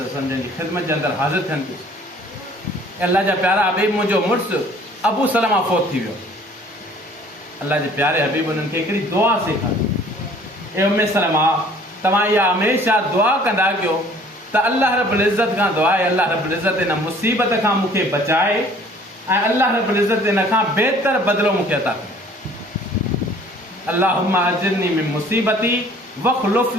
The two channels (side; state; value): both; normal; correlation 0.54